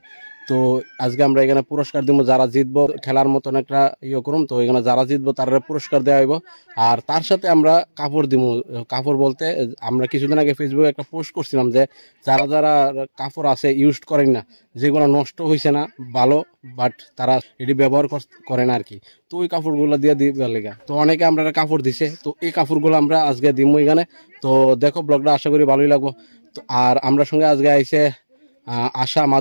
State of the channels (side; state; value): both; inverted; correlation -1.00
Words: তো আজকে আমরা এখানে পুরস্কার দিব, যারা জিতবো খেলার মতন একটা করুম। তো এখানে যারা জিতবো তারা পুরস্কার দেওয়া হইব, আর তার সাথে আমরা কাপড় দিব। কাপড় বলতে আমরা কিছুদিন আগে ফেসবুকে একটা পোস্ট করছিলাম যে যারা যারা কাপড় আছে ইউজ করেন না, যেগুলো নষ্ট হয়েছে না ভালো, বাট তারা এটি ব্যবহার করে না আর কি। তো ওই কাপড়গুলো দিয়ে দিবার লেগা তো অনেকে আমরা কাপড় দিছে। তো এই কাপড়গুলো আমরা আজকে দিব এখানে। তো দেখো ব্লগটা, আশা করি ভালোই লাগবো। তো আর আমরা সঙ্গে আজকে আইছে আশা